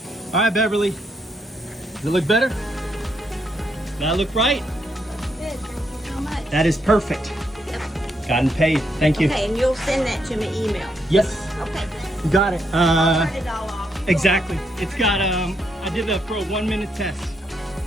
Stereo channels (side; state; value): both; normal; correlation 0.77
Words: All right, Beverly, does it look better? Does that look right? Good, thank you so much. That is perfect. Yep. Gotten paid. Thank you. Okay, and you'll send that to me email. Yes. Okay. You got it. I'll turn it all off. Exactly. It's got, I did that for a 1-minute test.